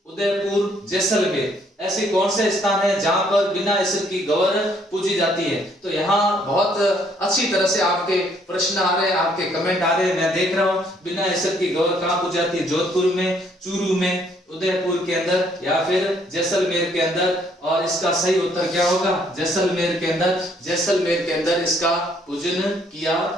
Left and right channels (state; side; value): normal; both; correlation 0.66